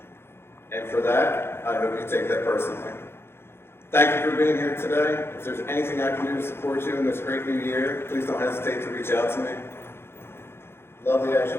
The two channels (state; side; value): late; right; 0.12 ms